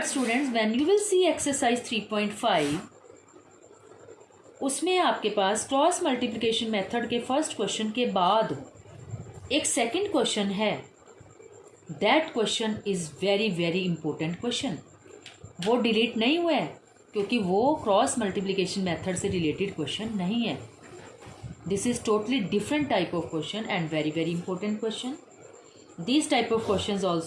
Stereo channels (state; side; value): identical; both; correlation 1.00